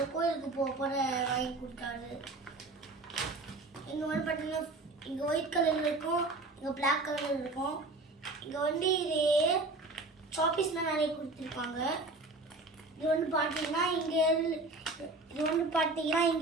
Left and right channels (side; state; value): left; quieter; 3.1 dB